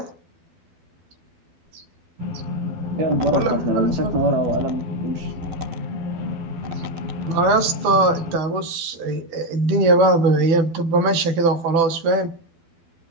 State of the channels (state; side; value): late; left; 12 ms